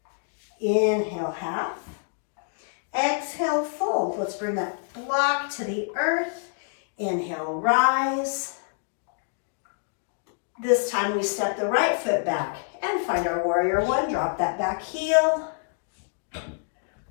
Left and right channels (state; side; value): silent; right; digital silence